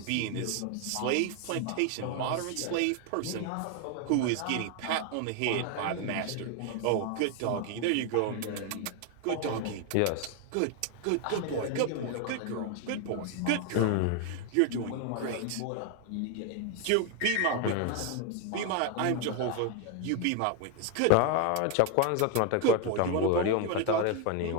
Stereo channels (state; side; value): different; both; correlation 0.01